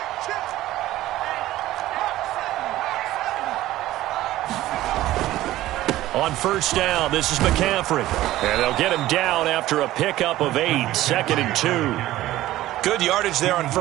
On first down, this is McCaffrey. And they'll get him down after a pickup of 8, 2nd and 2. Good yardage there on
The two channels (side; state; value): left; quieter; 15.4 dB